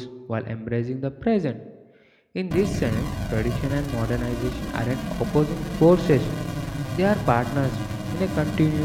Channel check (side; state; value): both; identical; correlation 1.00